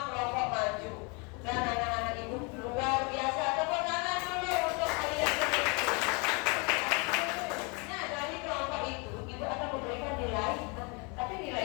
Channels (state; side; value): quieter; right; 31.5 dB